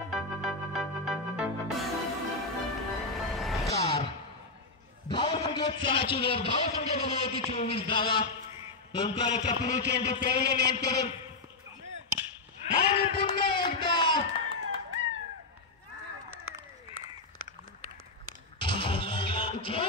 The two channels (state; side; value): quieter; right; 3.6 dB